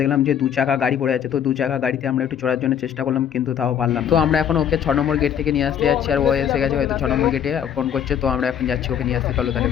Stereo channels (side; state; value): right; quieter; 9.0 dB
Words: যে 2 চাকা গাড়ি পড়ে আছে, তো 2 চাকা গাড়িতে আমরা একটু চড়ার জন্য চেষ্টা করলাম, কিন্তু তাও পারলাম। তো আমরা এখন ওকে 6 নম্বর গেট থেকে নিয়ে আসতে যাচ্ছি, আর ও এসে গেছে হয়তো 6 নম্বর গেটে ফোন করছে, তো আমরা এখন যাচ্ছি ওকে নিয়ে আসতে। চলো তাহলে